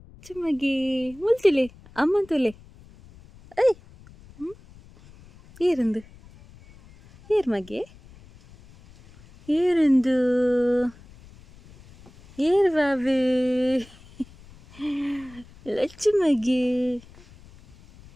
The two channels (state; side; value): noise; left; rumble, 23 dB below the sound